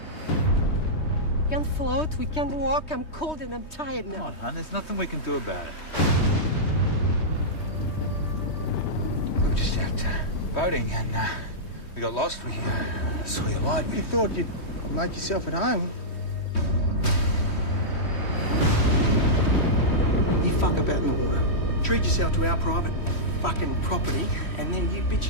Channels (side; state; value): right; late; 3.1 ms